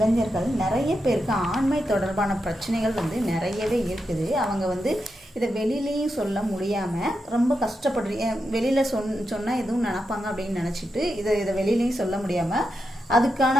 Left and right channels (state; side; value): normal; both; correlation 0.87